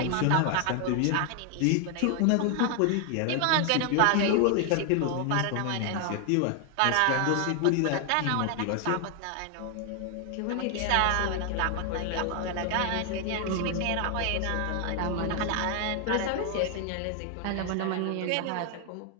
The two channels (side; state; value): both; different; correlation 0.00